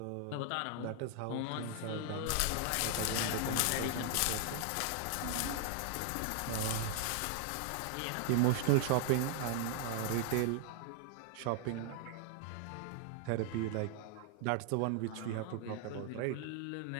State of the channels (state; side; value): different; both; correlation 0.00